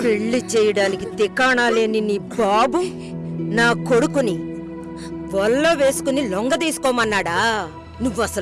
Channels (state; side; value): identical; both; correlation 1.00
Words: పెళ్లి చేయడానికి తికాణా లేని నీ బాబు నా కొడుకుని వల్ల వేసుకుని లొంగ తీసుకోమన్నాడా? నువ్వు